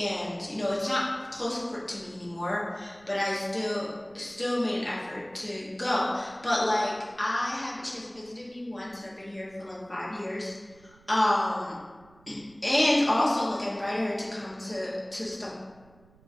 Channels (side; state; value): right; noise; rumble, 27 dB below the sound